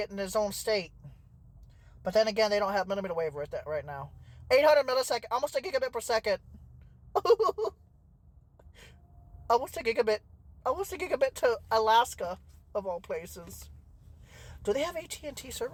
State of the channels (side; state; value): both; identical; correlation 1.00